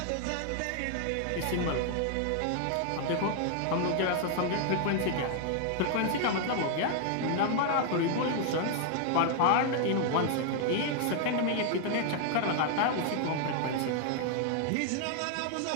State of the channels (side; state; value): both; different; correlation 0.00